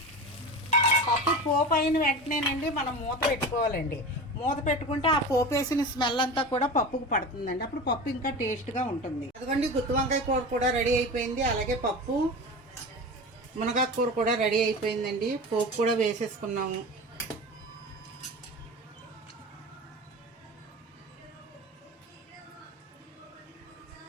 పప్పు పోపు అయిన వెంటనేనండి మనం మూత పెట్టుకోవాలండి. మూత పెట్టుకుంటే ఆ పోపు వేసిన స్మెల్ అంతా కూడా పప్పుకు పడుతుందండి. అప్పుడు పప్పు ఇంకా టేస్ట్గా ఉంటుంది. అదిగోండి గుత్తి వంకాయ కూర కూడా రెడీ అయిపోయింది. అలాగే పప్పు మునగాకు కూర కూడా రెడీ అయిపోయిందండి. పోపు కూడా వేసేసుకున్నాము.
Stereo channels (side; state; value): both; normal; correlation 0.30